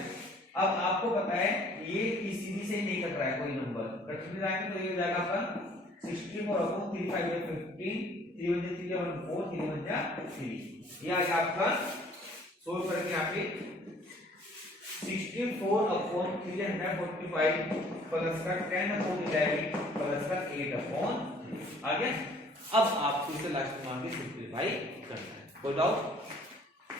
अब आपको पता है ये सीधी से नहीं कट रहा है कोई नंबर, कट नहीं रहा है तो ये हो जाएगा आपका 64/3 5 15 3 1 3 1 4 3 1 3। ये आ गया आपका सोल्व करके यहाँ पे 64/345 प्लस का 10/11 प्लस का 8/3 आ गया। अब आपको इसे लास्ट मान के सिंपलीफाई करना है। कोई डाउट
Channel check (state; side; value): normal; both; correlation 0.56